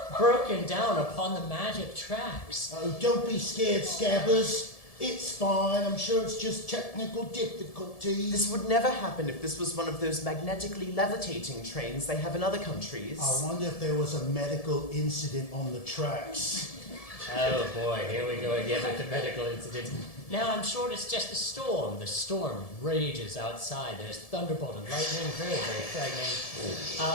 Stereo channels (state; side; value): late; right; 1.7 ms